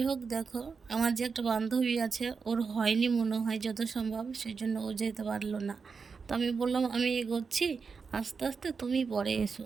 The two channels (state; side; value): quieter; left; 5.2 dB